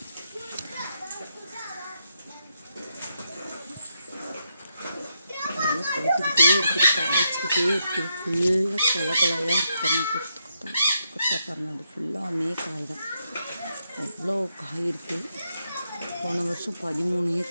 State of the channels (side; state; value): both; inverted; correlation -0.81